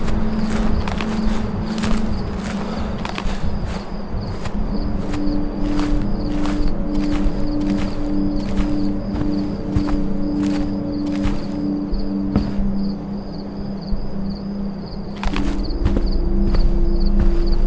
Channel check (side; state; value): both; identical; correlation 1.00